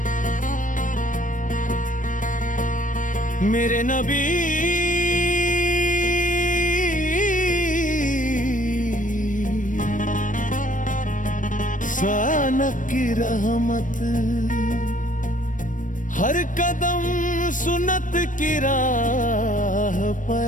मेरे नबी सानक की रहमत, हर कदम सुन्नत की राह पे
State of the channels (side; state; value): right; late; 0.38 ms